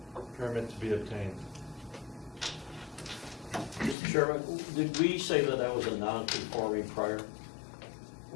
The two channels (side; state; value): right; drops out; at 4.0 s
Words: Permit to be obtained. Mr. Chairman, did we say that that was a non-conforming prior?